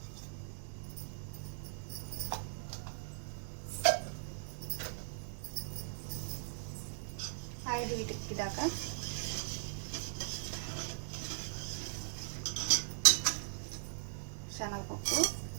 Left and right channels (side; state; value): left; silent; 52 dB below the other